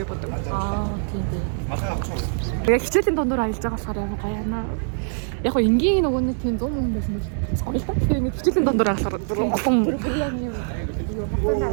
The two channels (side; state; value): left; silent; 56 dB below the other